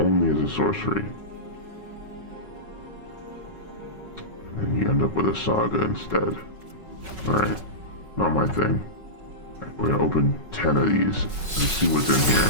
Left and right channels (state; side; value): late; left; 5.4 ms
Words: as a sorcery. And then you end up with a saga instead. Alright, not my thing. Right, we're gonna open 10 of these and see what's in here.